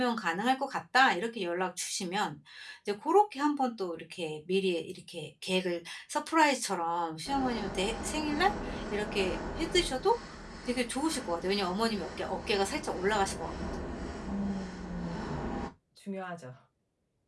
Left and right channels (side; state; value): both; identical; correlation 1.00